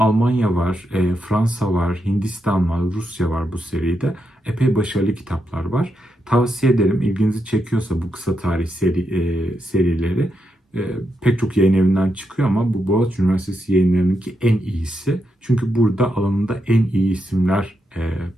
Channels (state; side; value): normal; both; correlation 0.83